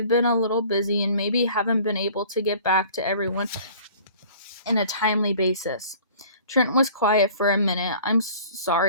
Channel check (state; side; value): inverted; both; correlation -0.49